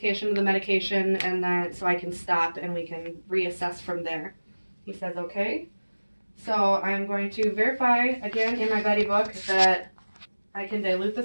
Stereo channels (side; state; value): both; inverted; correlation -1.00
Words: of the medication, and then so I can stop and we can reassess from there. He says okay. So I'm going to verify again in my buddy book that I can dilute